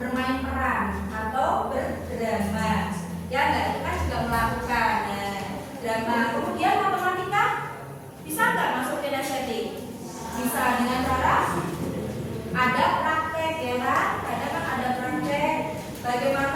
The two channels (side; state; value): both; identical; correlation 1.00